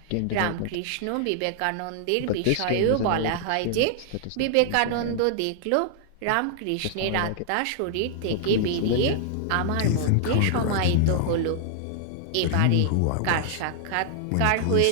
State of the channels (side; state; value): both; different; correlation -0.01